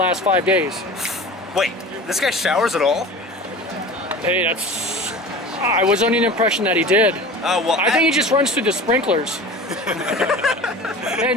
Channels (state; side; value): normal; both; correlation 0.36